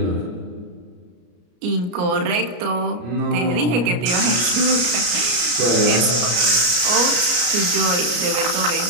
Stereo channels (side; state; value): left; late; 33 ms